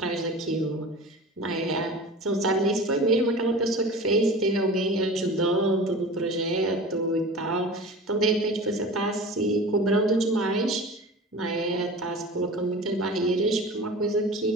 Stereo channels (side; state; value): both; normal; correlation 0.36